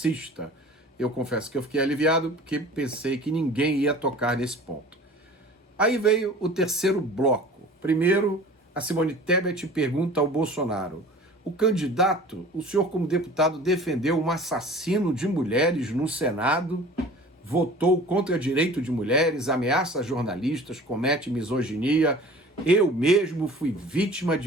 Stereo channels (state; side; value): normal; both; correlation 0.43